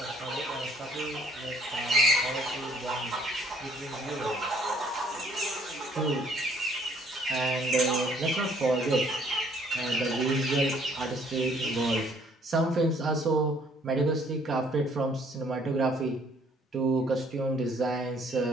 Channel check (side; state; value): both; normal; correlation 0.62